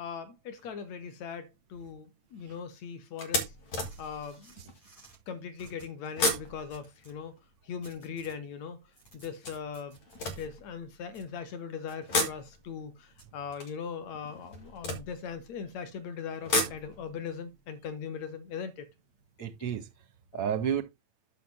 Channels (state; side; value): late; right; 8.9 ms